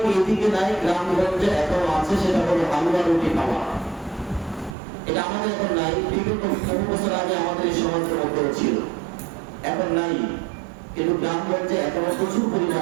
এইদিকে নাই, গ্রামগঞ্জে এখনো আছে, সেটা হলো হালুয়া রুটি খাওয়া। এটা আমাদের এখন নাই, বিগত বহু বছর আগে আমাদের এই সমাজের মধ্যে ছিল, এখন নাই। কিন্তু গ্রামগঞ্জে এখনো প্রচুর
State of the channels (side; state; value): left; drops out; at 4.8 s